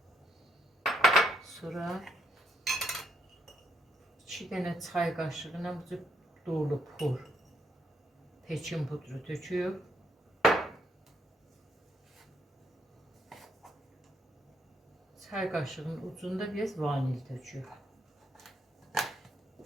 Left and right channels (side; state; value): both; normal; correlation 0.74